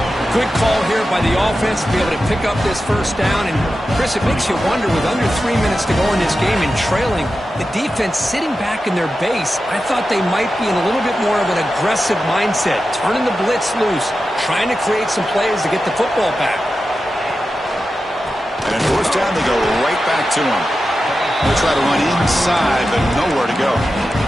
Good call here by the offense to be able to pick up this first down. And, Chris, it makes you wonder, with under 3 minutes to go in this game and trailing, the defense sitting back in their base, I thought they might be in a little bit more of an aggressive mindset, turning the blitz loose, trying to create some plays to get the football back. And on fourth down, they go right back to him. They'll try to run inside, but nowhere to go.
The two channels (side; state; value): both; normal; correlation 0.92